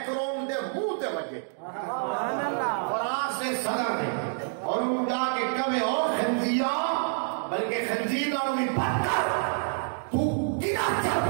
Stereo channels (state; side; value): silent; left; digital silence